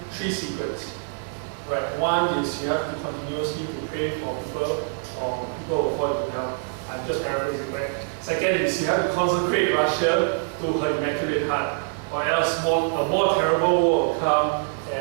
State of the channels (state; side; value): silent; left; 62 dB below the other